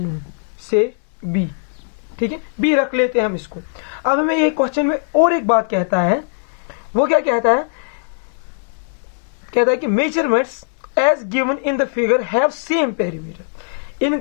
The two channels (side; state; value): right; silent; digital silence